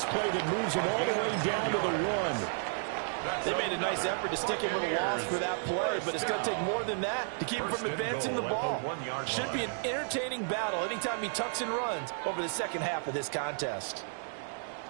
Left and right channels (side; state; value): left; silent; 56 dB below the other